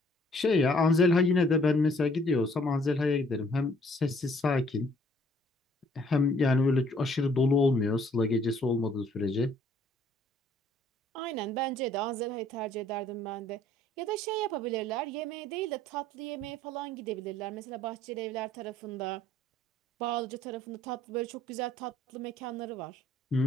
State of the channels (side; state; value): both; normal; correlation 0.61